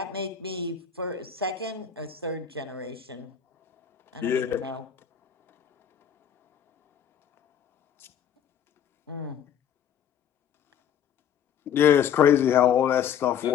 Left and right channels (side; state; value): right; quieter; 8.5 dB